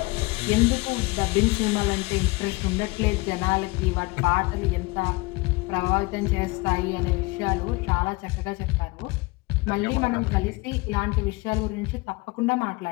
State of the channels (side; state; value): right; quieter; 24.3 dB